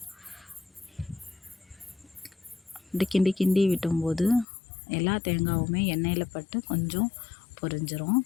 இப்படி கிண்டி கிண்டி விட்டும்போது எல்லா தேங்காயுமே எண்ணெயில் பட்டு கொஞ்சம் பொரிஞ்சிரும்.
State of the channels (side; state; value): right; drops out; at 4.5 s